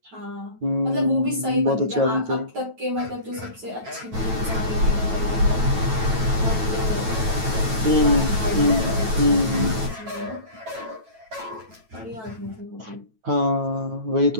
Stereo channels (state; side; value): late; left; 9.1 ms